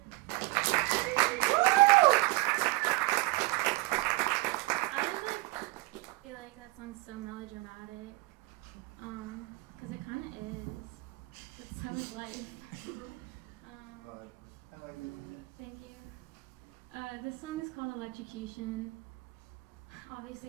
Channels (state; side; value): quieter; left; 22.5 dB